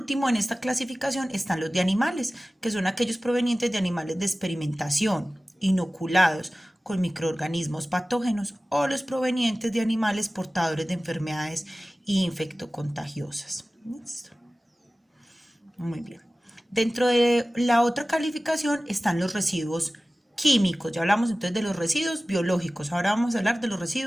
en esta clasificación están los de animales, que son aquellos provenientes de animales de experimentación, inoculados con microorganismos patógenos, o los provenientes de animales portadores de enfermedades infectocontagiosas. ¿Listo? Muy bien. Dentro de la otra calificación están los residuos químicos. Ya hablamos entonces de los residuos biológicos. Ahora vamos a hablar de los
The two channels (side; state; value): both; normal; correlation 0.97